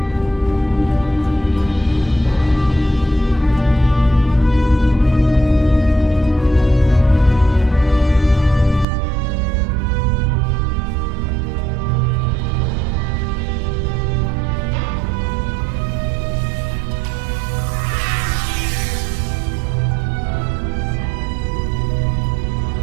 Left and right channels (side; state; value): left; drops out; at 8.8 s